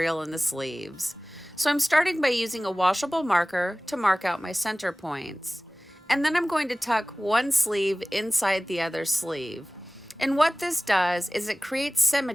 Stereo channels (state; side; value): normal; both; correlation 0.98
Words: in the sleeves. So I'm starting by using a washable marker to mark out my center points. And then I'm going to tuck one sleeve inside the other sleeve. And what this does is it creates